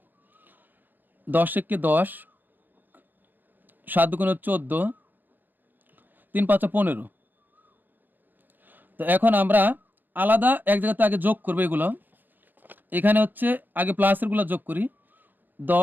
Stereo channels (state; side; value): late; left; 0.088 ms